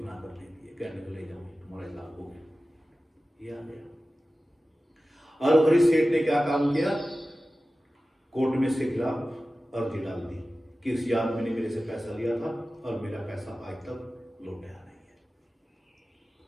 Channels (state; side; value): normal; both; correlation 0.96